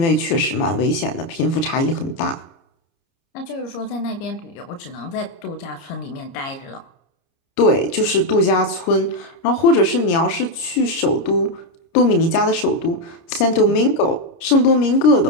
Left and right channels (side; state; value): right; late; 30 ms